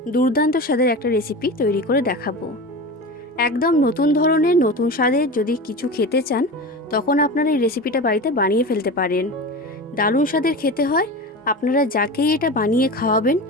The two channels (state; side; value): normal; both; correlation 0.29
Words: দুর্দান্ত স্বাদের একটা রেসিপি তৈরি করে দেখাবো। একদম নতুন ধরনের নতুন স্বাদের যদি কিছু খেতে চান তখন আপনারা এই রেসিপিটা বাড়িতে বানিয়ে ফেলতে পারেন। দারুণ স্বাদের খেতে হয়। আপনারা যাকেই এটা বানিয়ে খাওয়াবেন